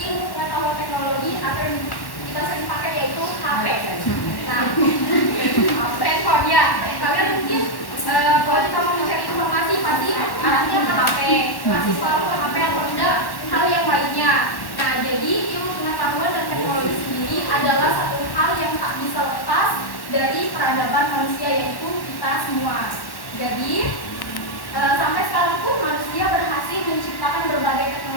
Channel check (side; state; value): right; late; 1.1 ms